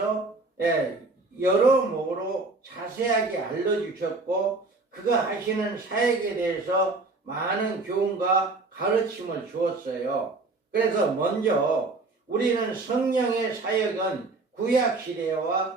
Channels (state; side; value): quieter; left; 3.4 dB